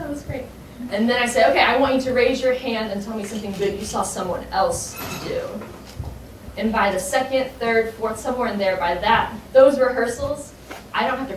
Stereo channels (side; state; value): both; identical; correlation 1.00